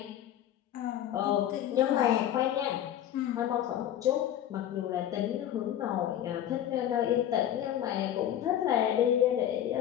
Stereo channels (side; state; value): right; quieter; 11.2 dB